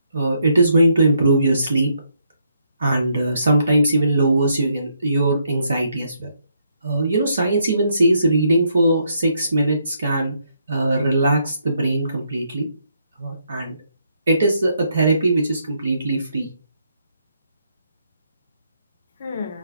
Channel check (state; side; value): inverted; both; correlation -0.74